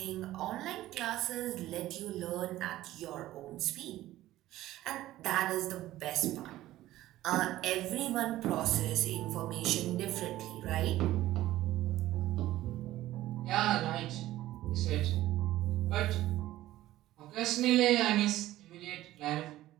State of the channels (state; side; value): quieter; left; 15.2 dB